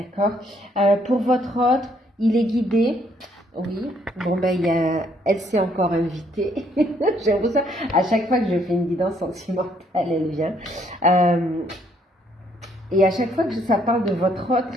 Pour votre hôte, il est guidé. Oui. Bon, ben, elle s'est encore invitée. J'ai l'impression, à chaque fois que je fais une guidance sentimentale, elle vient. Et à chaque fois que ça parle de votre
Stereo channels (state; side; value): normal; both; correlation 0.68